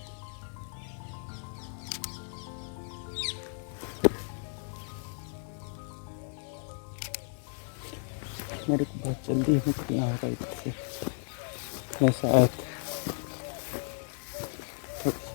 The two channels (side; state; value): right; silent; 55 dB below the other